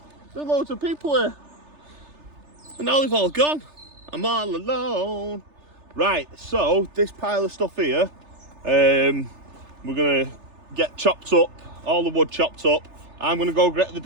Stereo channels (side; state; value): left; late; 3.3 ms